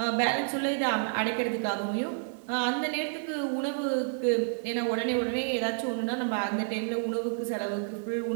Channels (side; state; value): left; silent; digital silence